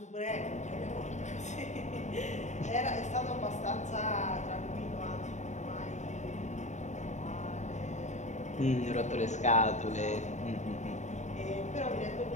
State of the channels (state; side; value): late; right; 0.34 ms